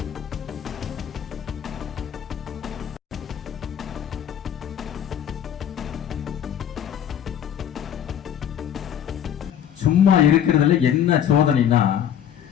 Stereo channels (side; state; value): right; quieter; 9.5 dB